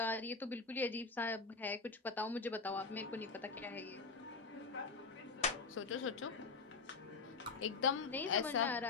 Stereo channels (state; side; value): quieter; right; 4.4 dB